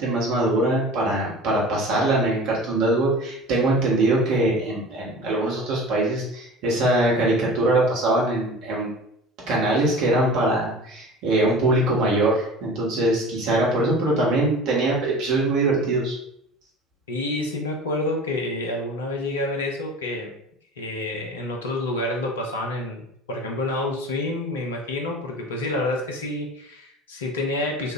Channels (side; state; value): both; normal; correlation 0.39